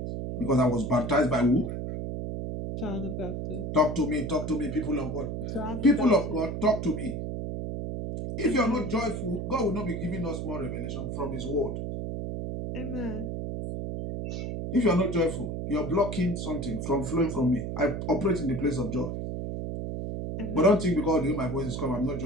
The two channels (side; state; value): right; noise; hum, 4 dB below the sound